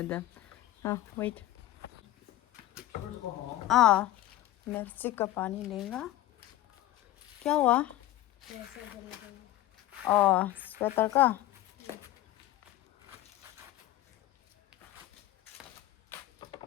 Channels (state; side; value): quieter; right; 14.8 dB